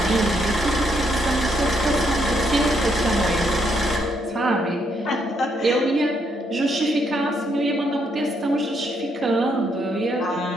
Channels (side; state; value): both; normal; correlation 0.75